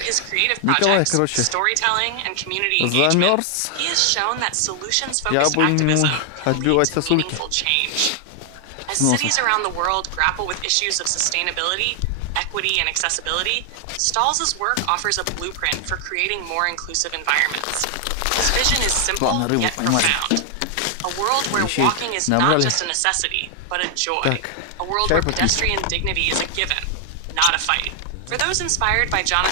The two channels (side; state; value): both; different; correlation 0.00